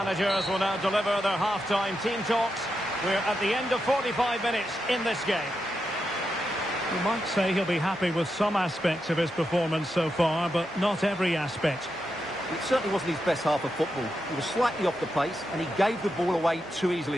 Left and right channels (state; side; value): normal; both; correlation 0.86